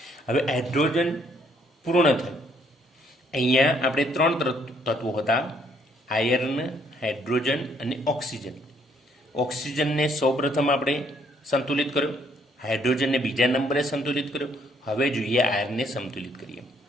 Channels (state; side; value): normal; both; correlation 0.67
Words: હવે હાઇડ્રોજન પૂર્ણ થયું. અહીંયા આપણે 3 તત્વો હતા: આયર્ન, હાઇડ્રોજન અને ઓક્સિજન. ઓક્સિજનને સૌપ્રથમ આપણે સંતુલિત કર્યો, હાઇડ્રોજનને બીજા નંબરે સંતુલિત કર્યો. હવે જોઈએ આયર્નને સંતુલિત કરીએ.